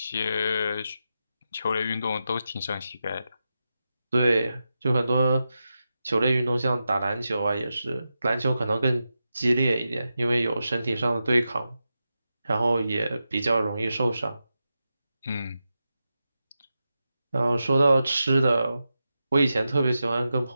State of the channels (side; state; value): both; inverted; correlation -0.90